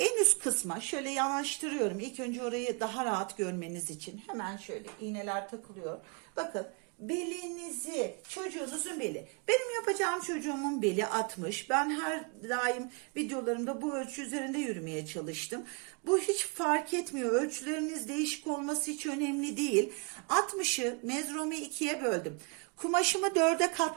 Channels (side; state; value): left; quieter; 33.0 dB